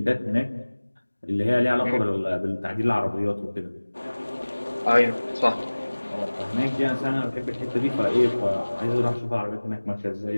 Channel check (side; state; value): both; inverted; correlation -1.00